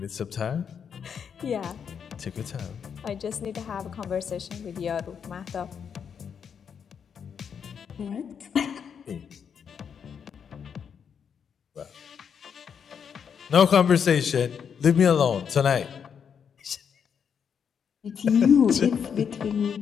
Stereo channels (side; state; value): right; quieter; 7.2 dB